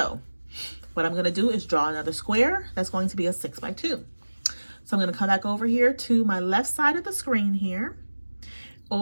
what I'm going to do is draw another square that's going to be a 6 by 2. So I'm going to come back over here to my left side of the screen here,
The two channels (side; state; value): both; inverted; correlation -1.00